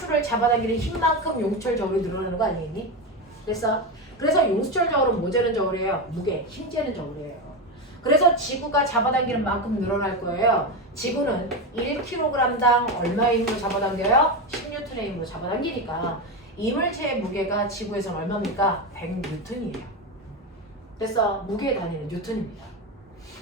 잡아당기는 힘만큼 용수철 저울이 늘어나는 거 아니겠니? 그래서 용수철 저울은 뭐 재는 저울이에요? 무게, 힘 재는 저울이에요. 그래서 지구가 잡아당기는 만큼 늘어날 거예요. 지구는 1kg당 얼마의 힘으로 잡아당겨요? 10N의 힘으로 잡아당기니까 이 물체의 무게가 지구에서는 얼마입니까? 100N이에요. 그래서 무게의 단위는 뉴턴입니다.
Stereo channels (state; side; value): normal; both; correlation 0.15